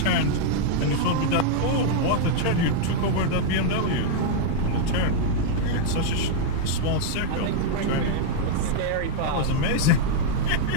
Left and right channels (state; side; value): different; both; correlation -0.01